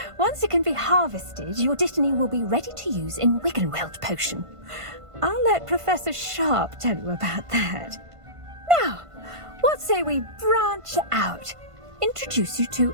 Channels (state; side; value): late; left; 1.5 ms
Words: Once it can be harvested, your Dittany will be ready to use in Wiggenweld potion. I'll let Professor Sharp tell you about that. Now, what say we branch out? Introduce you to